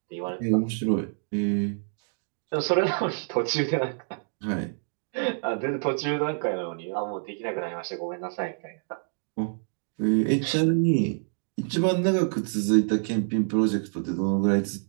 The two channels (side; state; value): left; silent; digital silence